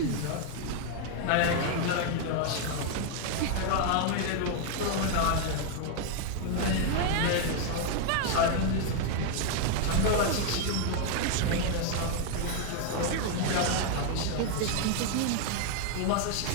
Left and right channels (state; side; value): different; both; correlation 0.00